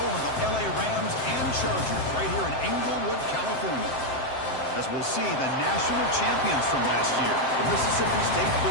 of the LA Rams and Chargers, right here in Inglewood, California. As we'll see the national champions from last year, the Mississippi State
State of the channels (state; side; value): late; right; 7.7 ms